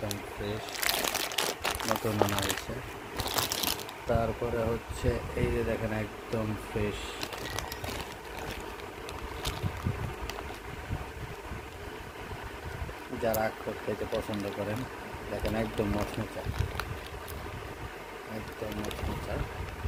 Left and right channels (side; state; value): both; identical; correlation 1.00